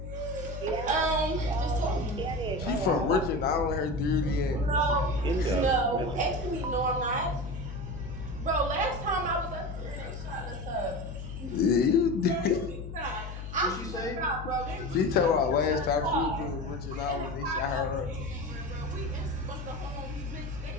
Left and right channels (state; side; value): noise; left; hum, 9 dB below the sound